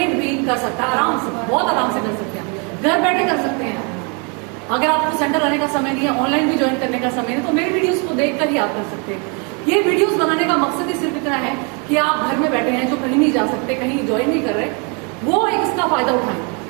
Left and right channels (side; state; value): left; quieter; 34.6 dB